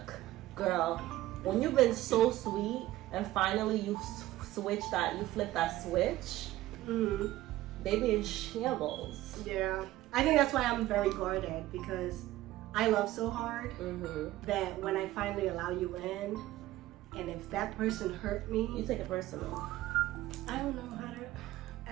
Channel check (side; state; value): left; quieter; 15.9 dB